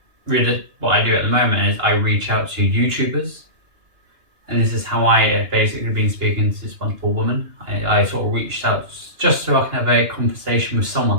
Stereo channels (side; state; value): left; late; 2.9 ms